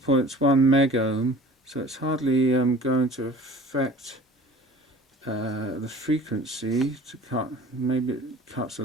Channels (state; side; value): normal; both; correlation 0.44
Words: 1 megohm, so it's hardly going to affect the frequency to cut. Maybe it cuts a